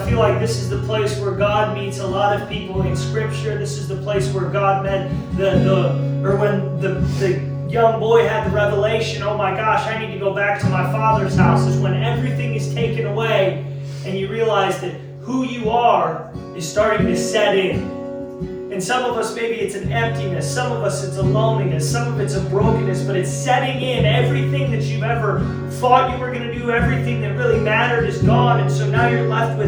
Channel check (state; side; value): identical; both; correlation 1.00